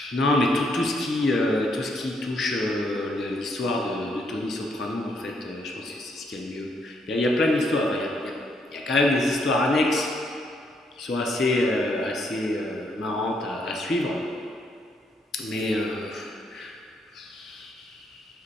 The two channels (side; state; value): both; normal; correlation 0.73